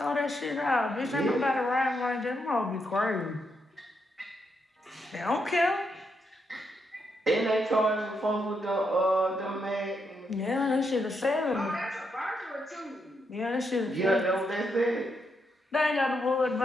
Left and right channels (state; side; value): normal; both; correlation 0.80